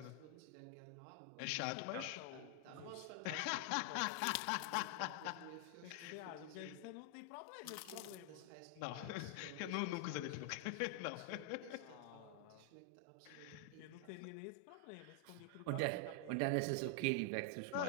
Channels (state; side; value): different; both; correlation 0.00